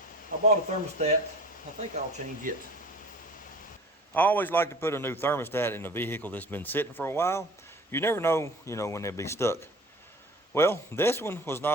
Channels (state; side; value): normal; both; correlation 0.44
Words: I bought a thermostat. I think I'll change it. I always like to put a new thermostat in a vehicle that's been sitting for a while. You never know, when they'll be stuck. Well, this one was